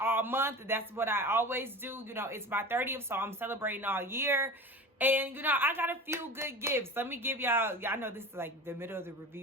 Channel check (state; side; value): normal; both; correlation 0.33